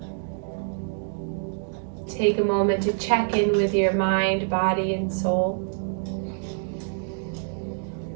Take a moment to check in with your mind, body, and soul.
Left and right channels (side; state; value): left; silent; digital silence